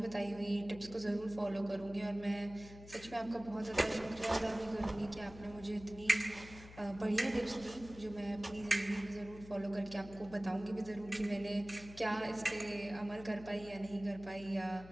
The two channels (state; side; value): noise; left; hum, 17 dB below the sound